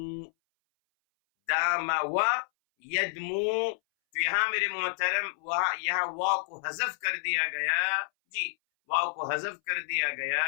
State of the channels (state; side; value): silent; right; 58 dB below the other